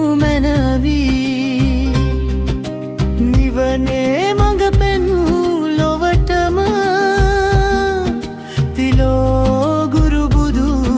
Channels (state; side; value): identical; both; correlation 1.00